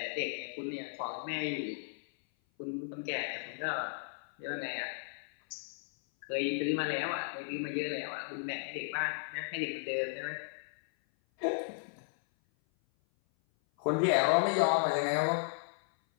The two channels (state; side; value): silent; right; 54 dB below the other